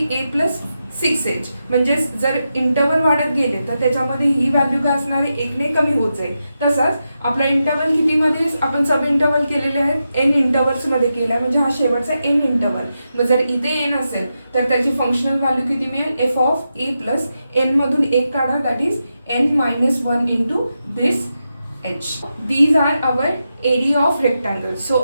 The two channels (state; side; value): inverted; both; correlation -0.88